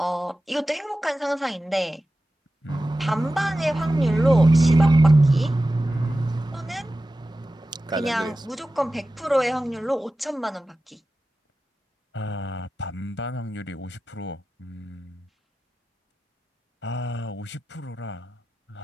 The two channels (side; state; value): both; normal; correlation 0.94